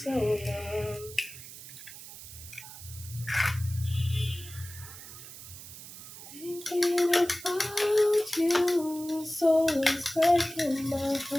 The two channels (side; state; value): right; noise; hiss, 14 dB below the sound